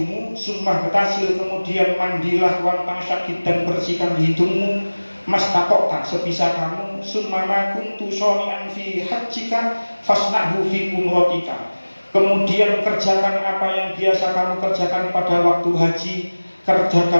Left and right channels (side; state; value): both; inverted; correlation -1.00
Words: sumpah betasil, kemudian mandilah wantang syakid dan bersihkan hidungmu, mas tatok tak sebisa kamu, summama kuntu shoni'an fi hajjika fasna'hu fi umrotika. Kemudian kerjakan apa yang biasa kamu kerjakan pada waktu haji,